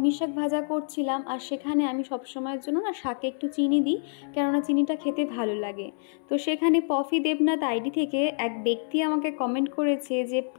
শাক ভাজা করছিলাম, আর সেখানে আমি সবসময়ের জন্য না শাকে একটু চিনি দিই, কেননা চিনিটা খেতে ভালো লাগে। তো সেখানে পফি দেবনাথ আইডি থেকে এক ব্যক্তি আমাকে কমেন্ট করেছে যে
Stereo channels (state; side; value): silent; right; 59 dB below the other